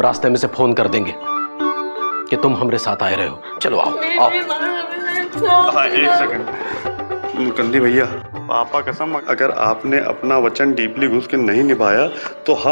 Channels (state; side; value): inverted; both; correlation -1.00